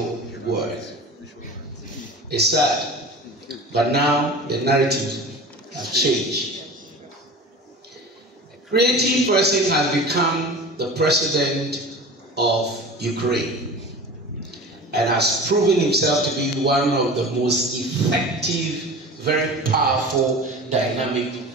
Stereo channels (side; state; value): both; normal; correlation 0.36